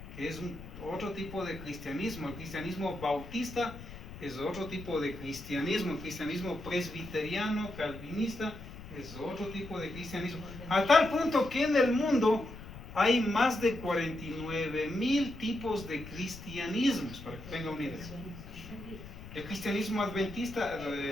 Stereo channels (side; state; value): left; noise; rumble, 14 dB below the sound